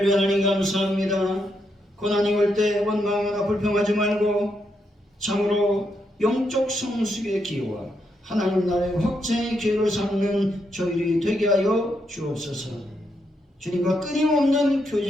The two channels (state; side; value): normal; both; correlation 0.80